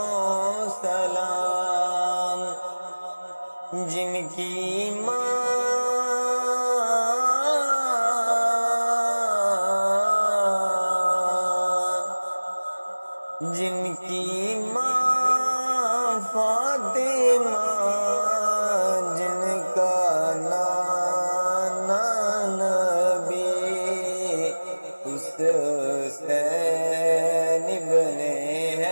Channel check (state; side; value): inverted; both; correlation -1.00